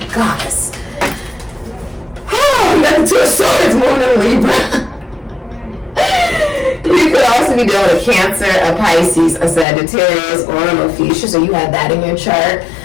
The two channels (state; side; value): drops out; right; at 9.7 s